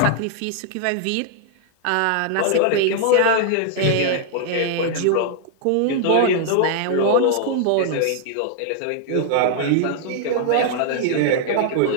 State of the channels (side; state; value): both; different; correlation 0.00